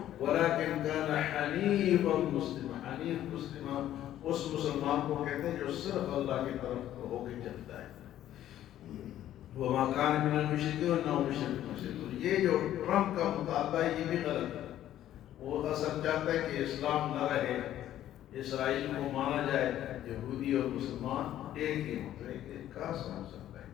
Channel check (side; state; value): right; quieter; 12.3 dB